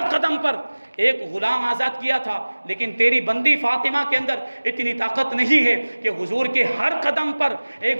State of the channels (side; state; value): both; inverted; correlation -1.00